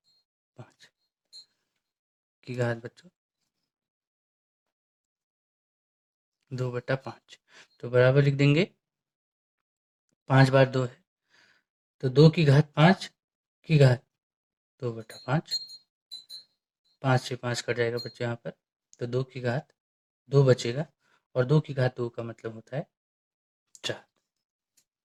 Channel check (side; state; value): both; identical; correlation 1.00